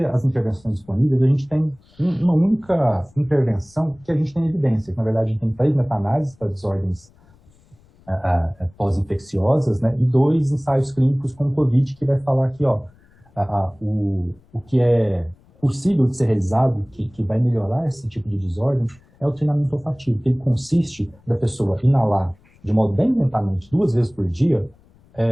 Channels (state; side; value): noise; left; rumble, 30 dB below the sound